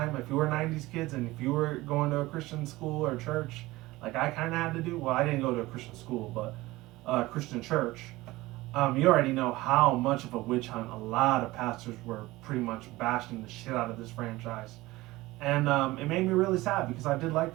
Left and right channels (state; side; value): quieter; left; 19.1 dB